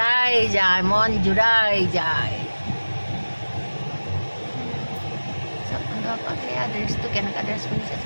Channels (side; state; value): both; inverted; correlation -1.00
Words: যায়, মন জোৰাই যায়। বন্ধুসকল সেয়া ড্ৰেছটো কেনেকুৱা ড্ৰেছ পিন্ধিছে